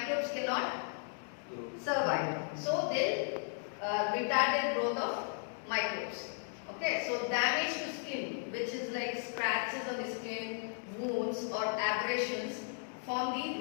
cannot survive. So they retarded growth of microbes. Okay, so damage to skin, which is like scratches on the skin, wounds or abrasions, form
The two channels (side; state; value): right; silent; 54 dB below the other